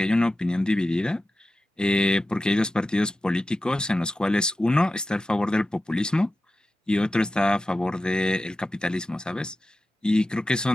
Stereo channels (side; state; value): both; normal; correlation 0.93